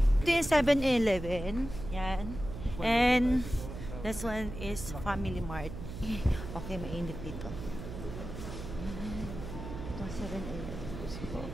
Ito yung 7-Eleven. Yan. And this one is Family Mart. Okay, mainit dito. Ito 7-Eleven.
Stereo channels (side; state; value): right; noise; hum, 9 dB below the sound